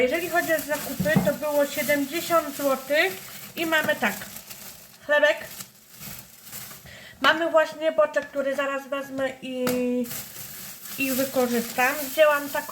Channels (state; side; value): identical; both; correlation 1.00